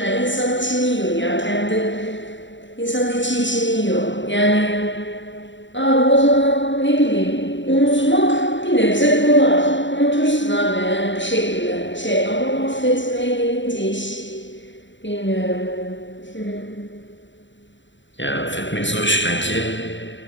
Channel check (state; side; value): late; right; 0.54 ms